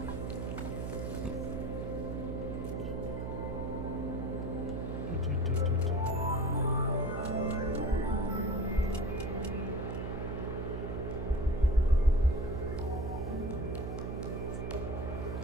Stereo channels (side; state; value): right; noise; hum, 4 dB below the sound